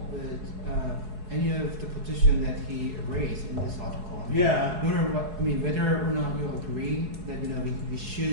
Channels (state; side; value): late; left; 4.7 ms